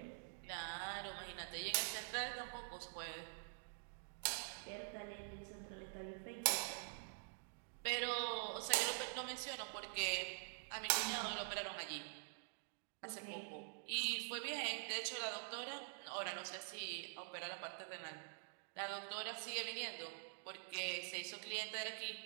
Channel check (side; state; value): left; silent; digital silence